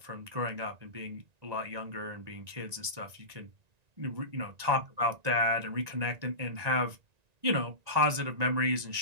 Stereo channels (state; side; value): late; left; 1.9 ms